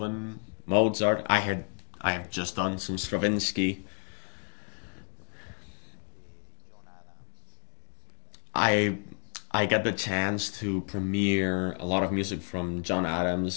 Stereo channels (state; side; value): silent; right; 57 dB below the other